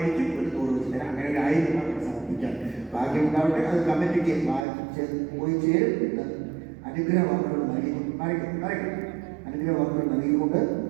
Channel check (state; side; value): drops out; left; at 4.7 s